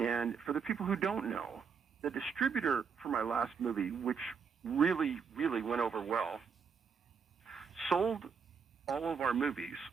for the people who don't know, the distributor for my last movie, which really, really went over well, sold all of our movies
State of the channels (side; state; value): left; quieter; 6.1 dB